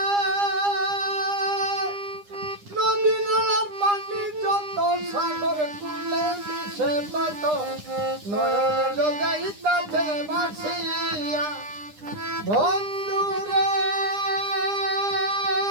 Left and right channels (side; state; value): left; late; 9.9 ms